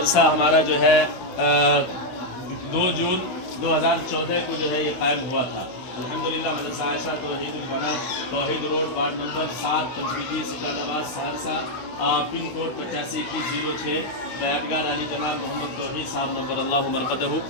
ہمارا جو ہے 2 جون 2014 کو جو ہے یہ قائم ہوا تھا۔ الحمدللہ مدرسہ عائشہ توحید البنات، توحید روڈ، وارڈ نمبر 7، پنچوٹی، سٹال آباد، سہرسہ، پن کوڈ 852106، بیعتگار علی جناب محمد توحید صاحب نمبر اللہ مرقدہ۔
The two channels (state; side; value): late; right; 16 ms